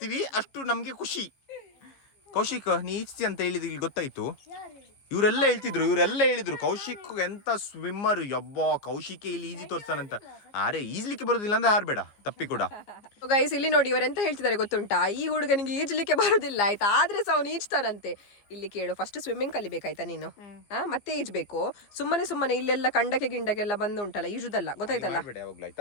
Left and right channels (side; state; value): right; late; 14 ms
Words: ಅಷ್ಟು ನಮ್ಗೆ ಖುಷಿ. ಕೌಶಿಕ್ ನೀ ಈಜ್ತಿ ಅಂತ ಹೇಳಿದ್ ಇಲ್ಲಿ ಗೊತ್ತಾಯ್ತು. ಇವರೆಲ್ಲ ಹೇಳಿದ್ರು ಕೌಶಿಕ್ ಎಂತ ಸ್ವಿಮ್ಮರ್, ಯಬ್ಬ ಕೌಶಿಕೆ ಇಲ್ಲಿ ಈಜಿ ತೋರ್ಸ್ತಾನಂತ. ಅರೆ ಈಜ್ಲಿಕ್ಕೆ ಬರೋದಿಲ್ಲ ಅಂದ್ರೆ ಹಾರ್ಬೇಡ ತಪ್ಪಿ ಕೂಡ. ಗೈಸ್ ಇಲ್ಲಿ ನೋಡಿ ಇವರೆಂತ ಹೇಳ್ತಿದ್ದಾರೆ ಗೊತ್ತುಂಟಾ, ಈ ಹುಡುಗನಿಗೆ ಈಜ್ಲಿಕ್ಕೆ ಬರೋದಿಲ್ಲ ಆಯ್ತಾ, ಆದ್ರೆ ಸಹ ಅವನು ಈಜ್ತಾನಂತೆ. ಇಲ್ಲಿ ಕೇಳು, ಫಸ್ಟ್ ಸ್ವಿಮ್ಮಿಂಗ್ ಕಲಿಬೇಕಾಯ್ತಾ ನೀನು, ಮತ್ತೆ ಈಜ್ಬೇಕು. ಸುಮ್ಮನೆ ಇಲ್ಲೆಲ್ಲ ಕಂಡಕ್ಕೆ ಗಿಂಡಕ್ಕೆಲ್ಲ ಬಂದು ಉಂಟಲ್ಲ ಈಜುದಲ್ಲ, ಗೊತ್ತಾಯ್ತಲ್ಲ?